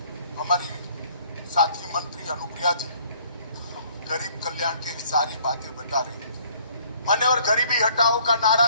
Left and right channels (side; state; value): both; inverted; correlation -0.59